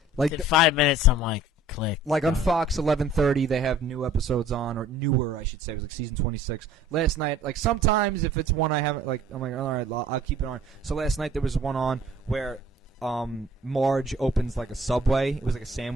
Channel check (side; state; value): both; normal; correlation 0.51